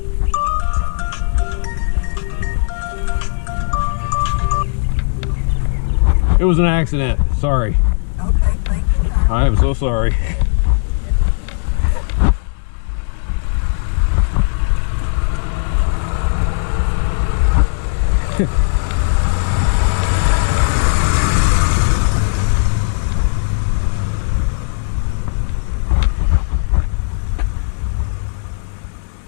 it was an accident. Sorry. Okay, thank you. I am so sorry.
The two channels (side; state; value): right; silent; digital silence